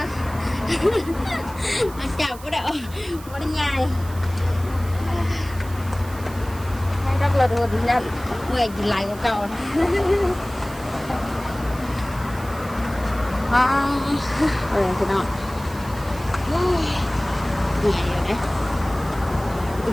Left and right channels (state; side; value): noise; right; hiss, 19 dB below the sound